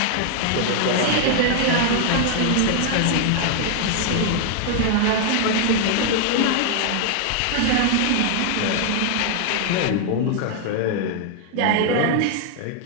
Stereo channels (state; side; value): different; both; correlation 0.00